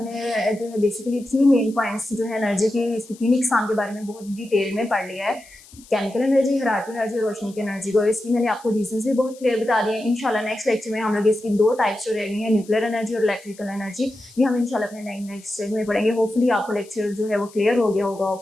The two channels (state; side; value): noise; left; hiss, 23 dB below the sound